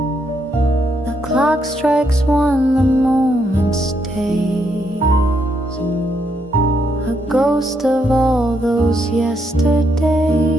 The clock strikes one, the moment stays, a ghost of all those yesterdays.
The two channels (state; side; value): normal; both; correlation 0.76